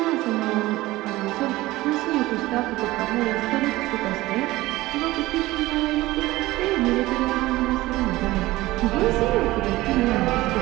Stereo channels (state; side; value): quieter; left; 18.3 dB